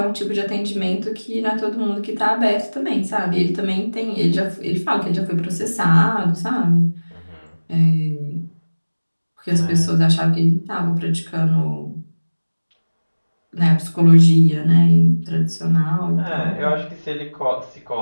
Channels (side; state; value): both; inverted; correlation -1.00